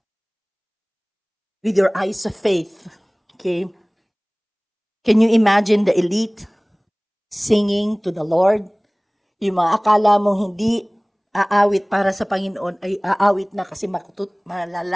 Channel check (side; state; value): both; identical; correlation 1.00